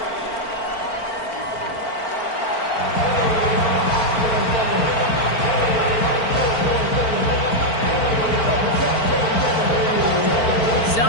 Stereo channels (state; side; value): late; right; 4.5 ms